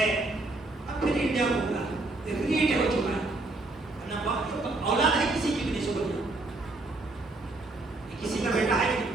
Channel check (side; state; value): left; quieter; 3.0 dB